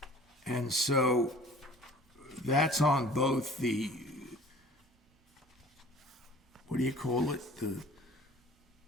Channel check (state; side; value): normal; both; correlation 0.47